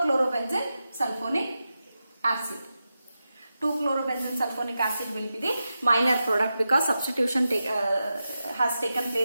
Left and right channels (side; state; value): both; inverted; correlation -0.91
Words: sulfonic acid. 2-chlorobenzene sulfonic acid will be the minor product because substitution has taken